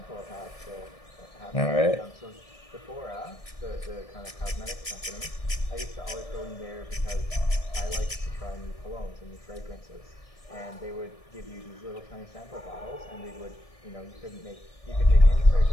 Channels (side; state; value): right; late; 1.7 ms